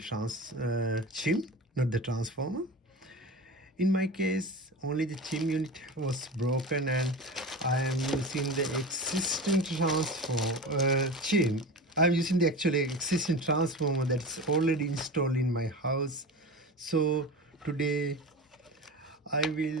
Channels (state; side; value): normal; both; correlation 0.30